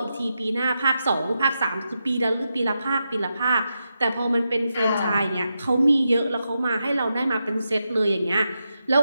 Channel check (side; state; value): both; inverted; correlation -0.87